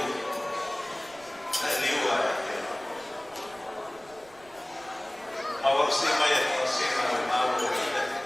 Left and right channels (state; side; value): noise; right; rumble, 26 dB below the sound